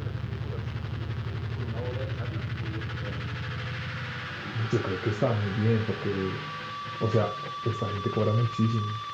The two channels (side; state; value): both; identical; correlation 1.00